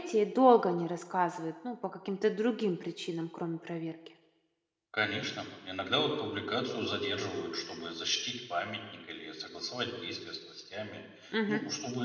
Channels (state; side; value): identical; both; correlation 1.00